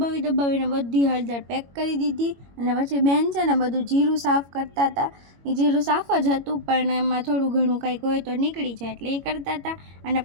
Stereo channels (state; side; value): late; left; 21 ms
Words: બધી હળદર પેક કરી દીધી। અને પછી બેન છે ને બધું જીરું સાફ કરતા હતા। એ જીરું સાફ જ હતું પણ એમાં થોડું ઘણું કંઈક હોય તો નીકળી જાય એટલે એ કરતા હતા। અને